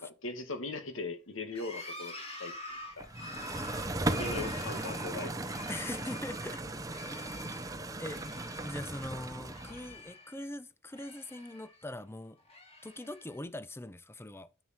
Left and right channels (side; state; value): both; normal; correlation 0.41